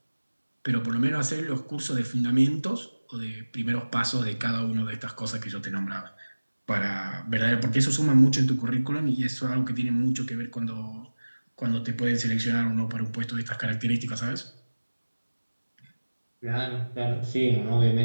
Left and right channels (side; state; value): both; inverted; correlation -1.00